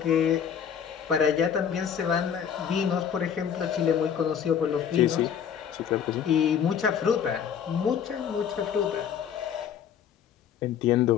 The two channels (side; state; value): right; quieter; 8.1 dB